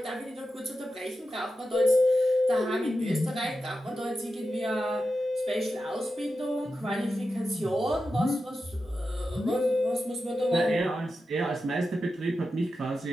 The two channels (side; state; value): both; normal; correlation 0.90